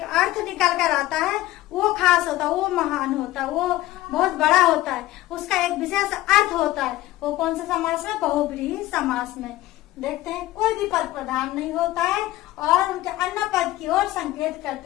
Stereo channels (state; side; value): quieter; right; 16.3 dB